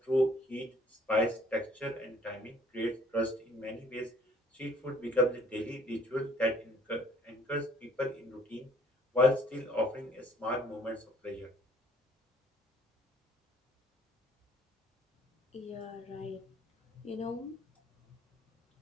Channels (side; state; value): both; normal; correlation 0.59